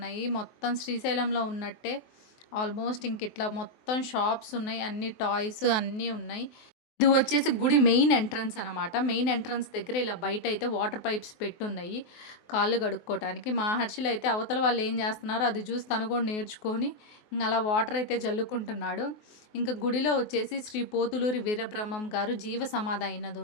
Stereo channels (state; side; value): late; right; 24 ms